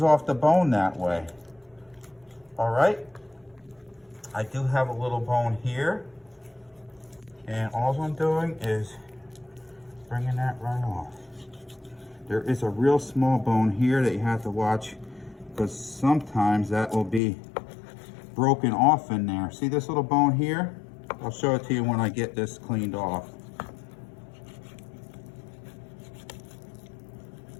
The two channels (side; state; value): right; drops out; at 17.2 s